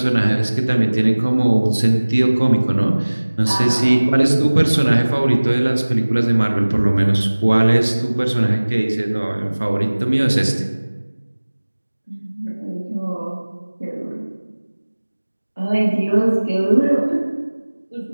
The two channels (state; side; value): inverted; both; correlation -1.00